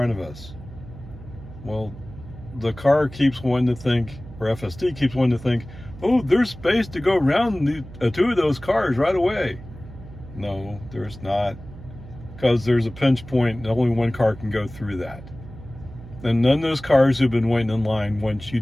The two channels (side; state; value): right; noise; hum, 16 dB below the sound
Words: of us. Well, the car keeps wanting to think, or FSD keeps wanting to think, oh, there's space to go around 2 of those cars right away. No, there's not, because there's a pinch point and only 1 car can go through that. And none of those cars who've been waiting in line want you